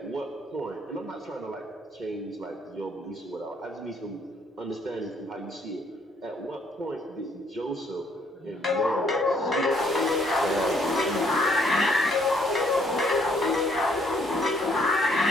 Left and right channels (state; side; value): normal; both; correlation 0.66